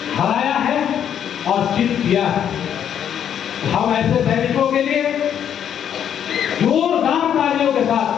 हराया है और जीत किया है। हम ऐसे सैनिकों के लिए जोरदार तालियों के साथ,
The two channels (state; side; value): quieter; right; 9.2 dB